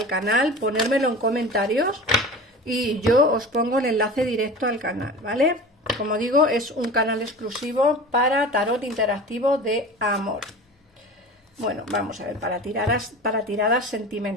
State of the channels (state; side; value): normal; both; correlation 0.35